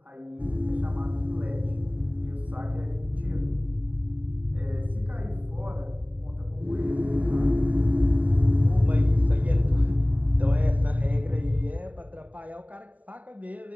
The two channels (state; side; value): late; left; 0.073 ms